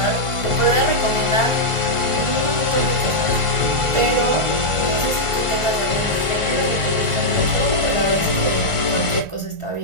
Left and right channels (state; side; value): late; left; 1.4 ms